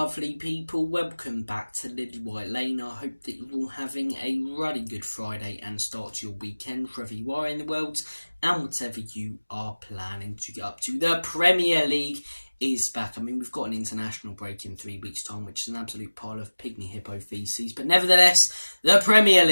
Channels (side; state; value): both; inverted; correlation -1.00